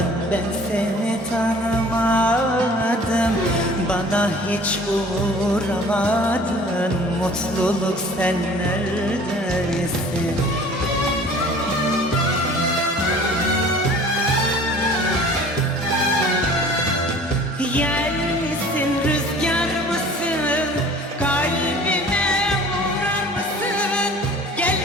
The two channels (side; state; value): both; normal; correlation 0.48